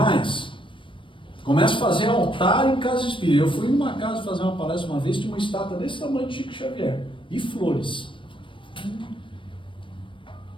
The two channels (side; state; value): right; late; 0.25 ms